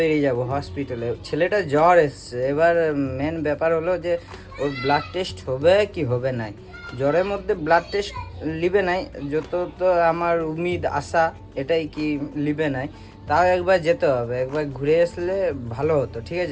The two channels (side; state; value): both; identical; correlation 1.00